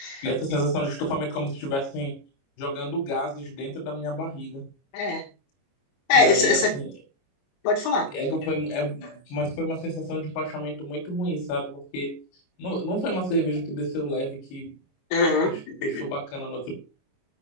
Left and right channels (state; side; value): late; right; 22 ms